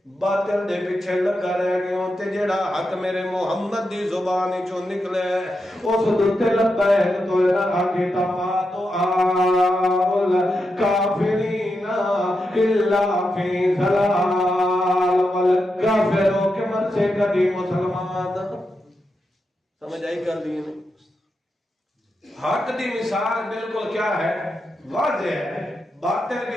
باطل دے پیچھے لگا رہ گیوں تے جڑا حق میرے محمد دی زبان چوں نکلے اس دتے لبیک تو نہ آگے تما تو آل کافرین الا فی ضلال والکافروں کے من سے کبھی مسلمان سمجھ آئی کر دی نہیں۔ حق دی مثال بالکل کیا ہے؟ واضح ہے، باطل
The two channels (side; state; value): both; normal; correlation 0.87